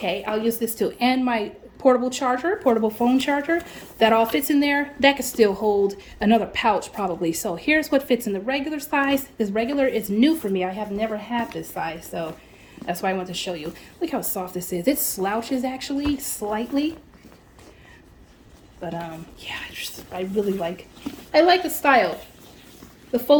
I'll use this too. And my portable phone charger. That all fits in there. That could still hold another pouch probably. So here's what fits in the regular size. This regular is new for me. I have never had this size, so that's why I want to show you. Look how soft this is. It slouches actually slightly. But yeah, I really like the style. The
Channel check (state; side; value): identical; both; correlation 1.00